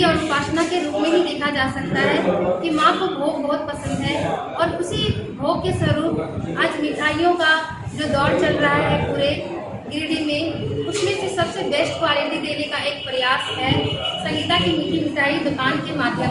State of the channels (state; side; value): identical; both; correlation 1.00